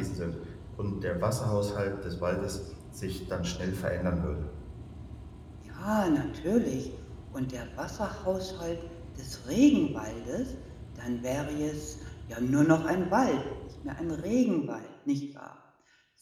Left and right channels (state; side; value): identical; both; correlation 1.00